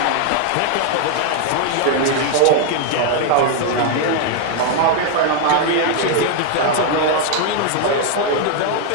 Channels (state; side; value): different; both; correlation 0.00